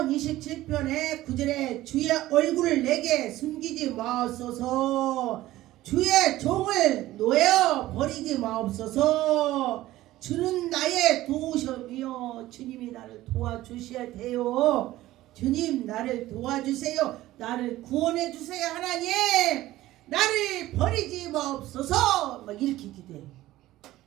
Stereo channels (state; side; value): quieter; left; 15.9 dB